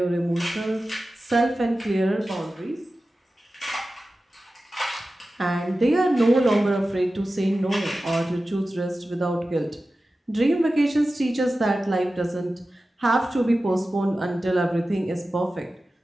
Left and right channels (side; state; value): both; normal; correlation 0.95